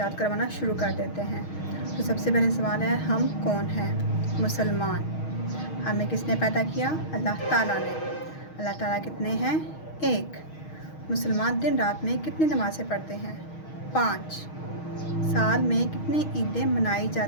کروانا شروع کر دیتے ہیں۔ تو سب سے پہلے سوال ہے، ہم کون ہیں؟ مسلمان۔ ہمیں کس نے پیدا کیا؟ اللہ تعالیٰ نے۔ اللہ تعالیٰ کتنے ہیں؟ 1۔ مسلمان دن رات میں کتنی نمازیں پڑھتے ہیں؟ 5۔ سال میں کتنی عیدیں منائی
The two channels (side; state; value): right; late; 6.4 ms